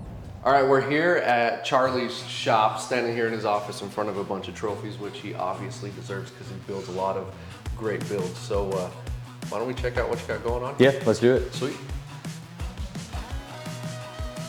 All right, we're here at Charlie's shop, standing here in his office in front of a bunch of trophies, which he obviously deserves because he builds a lot of great builds. So why don't we check out what you got going on? Yeah, let's do it. Sweet.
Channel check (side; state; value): both; identical; correlation 1.00